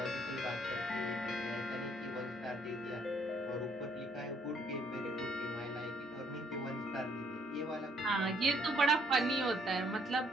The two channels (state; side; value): normal; both; correlation 0.67